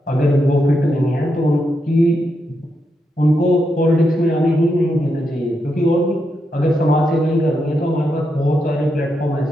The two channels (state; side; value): normal; both; correlation 0.83